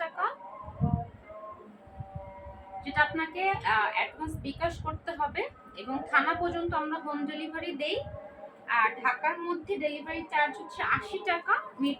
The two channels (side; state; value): both; identical; correlation 1.00